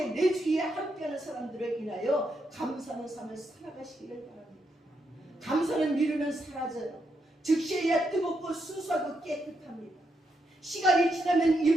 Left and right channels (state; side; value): normal; both; correlation 0.81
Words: 내 주위에 함께하는 사람들을 인하여 감사하는 삶을 살아가시기를 바랍니다. 감사는 미루면 사라져요. 즉시해야 뜨겁고 순수하고 깨끗합니다. 시간이 지나면